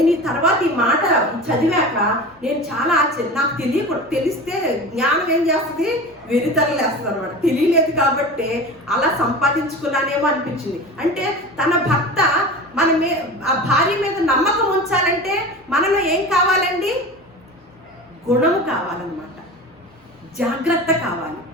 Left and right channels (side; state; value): both; normal; correlation 0.32